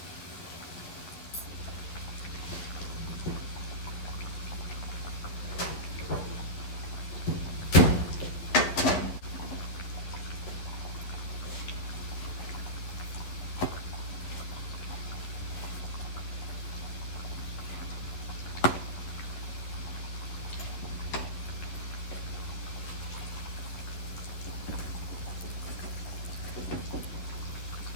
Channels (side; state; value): right; late; 11 ms